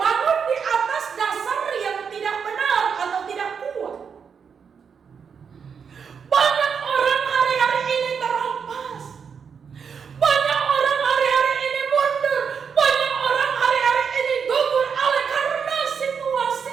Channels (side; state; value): left; quieter; 6.5 dB